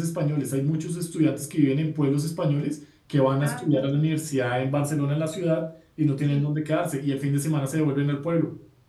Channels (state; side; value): identical; both; correlation 1.00